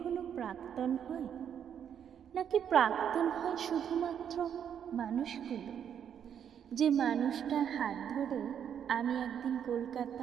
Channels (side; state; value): left; quieter; 8.6 dB